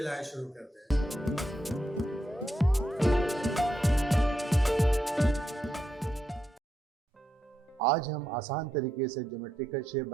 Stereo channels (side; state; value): both; normal; correlation 0.83